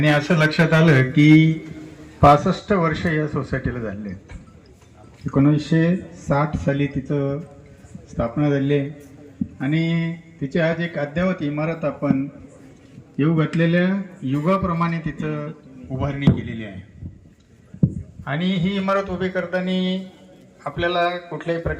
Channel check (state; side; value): identical; both; correlation 1.00